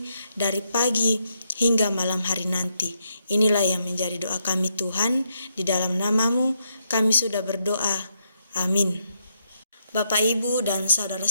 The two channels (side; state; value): both; inverted; correlation -0.78